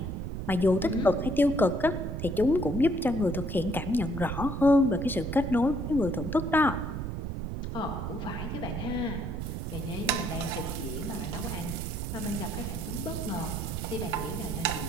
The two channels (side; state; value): right; noise; rumble, 4 dB below the sound